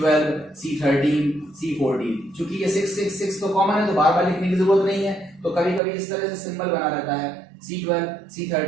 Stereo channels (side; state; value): left; drops out; at 5.8 s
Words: C13, C14। चूंकि ये 666 तो कॉमन है तो बार बार लिखने की जरूरत नहीं है, तो कभी कभी इस तरह से सिंबल बना रहता है C12,